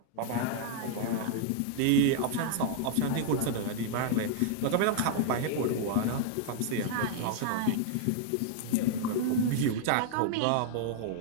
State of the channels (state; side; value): different; both; correlation -0.01